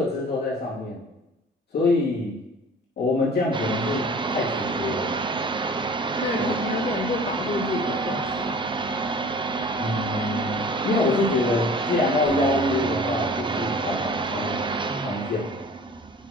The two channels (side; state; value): both; normal; correlation 0.45